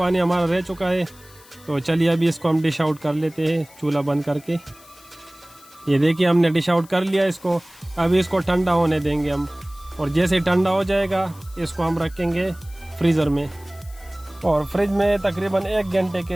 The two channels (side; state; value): left; noise; hiss, 24 dB below the sound